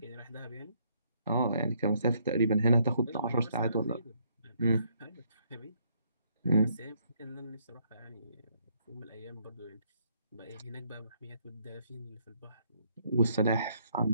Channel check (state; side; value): inverted; both; correlation -0.70